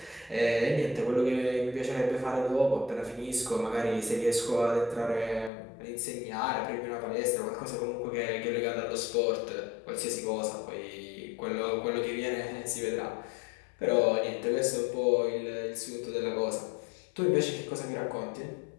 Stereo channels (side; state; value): right; drops out; at 5.5 s